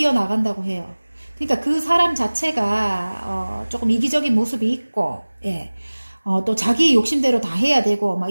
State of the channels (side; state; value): both; inverted; correlation -1.00